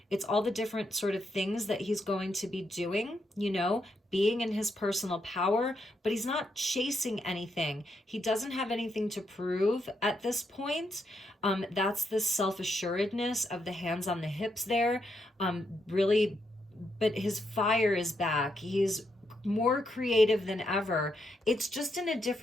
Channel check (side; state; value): both; normal; correlation 0.80